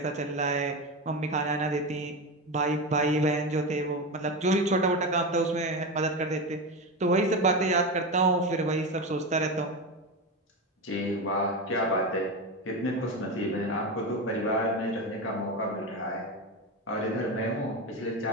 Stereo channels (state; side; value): normal; both; correlation 0.18